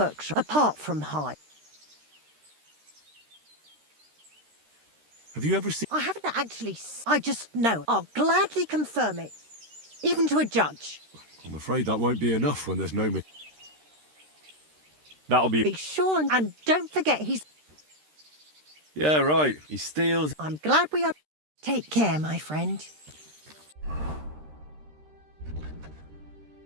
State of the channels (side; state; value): left; late; 13 ms